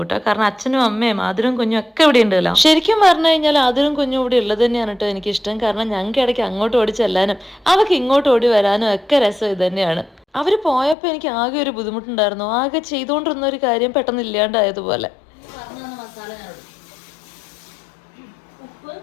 കേട്ടോ. കാരണം അച്ഛനും അമ്മയും ആതിരും കുഞ്ഞും ഒക്കെ ഇവിടെ ഉണ്ട്. ശരിക്കും പറഞ്ഞു കഴിഞ്ഞാൽ ആതിരും കുഞ്ഞും ഇവിടെ ഉള്ളത് തന്നെയാണ് കേട്ടോ എനിക്കിഷ്ടം. കാരണം ഞങ്ങൾക്ക് ഇടയ്ക്ക് അങ്ങോട്ട് ഓടി ചെല്ലാനും അവർക്ക് ഇങ്ങോട്ട് ഓടി വരാനും ഒക്കെ രസം ഇത് തന്നെയാണ്. അവർ പോയപ്പോൾ എനിക്ക് ആകെ ഒരു ബുദ്ധിമുട്ടുണ്ടായിരുന്നു. ആകെ ചെയ്തുകൊണ്ടിരുന്ന ഒരു കാര്യം പെട്ടെന്ന് ഇല്ലാണ്ടായതുപോലെ.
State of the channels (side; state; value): right; drops out; at 11.0 s